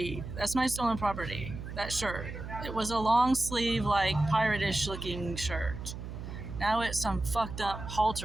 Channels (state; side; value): noise; right; hum, 9 dB below the sound